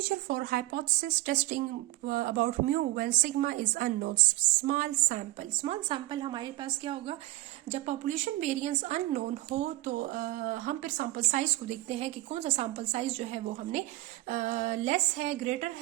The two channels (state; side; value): quieter; left; 18.4 dB